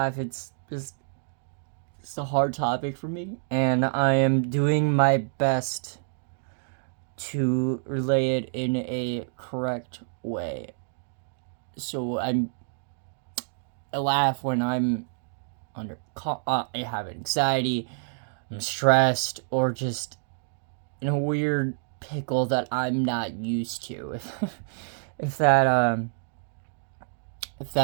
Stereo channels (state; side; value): silent; left; digital silence